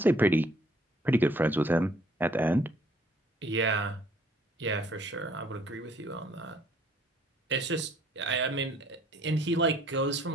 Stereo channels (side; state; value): both; normal; correlation 0.60